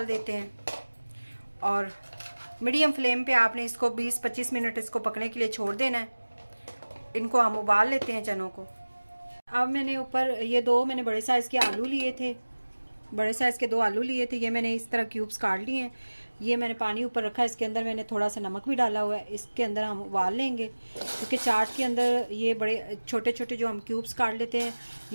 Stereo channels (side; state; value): both; inverted; correlation -1.00